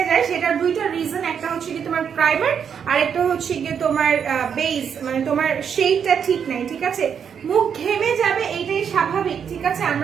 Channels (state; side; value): quieter; left; 7.5 dB